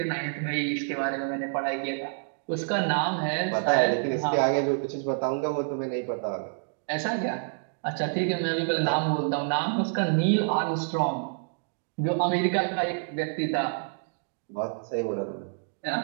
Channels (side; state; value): left; silent; digital silence